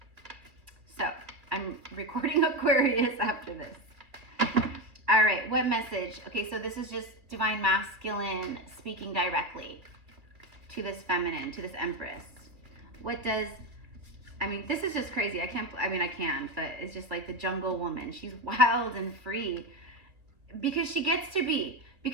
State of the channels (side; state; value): left; late; 2.4 ms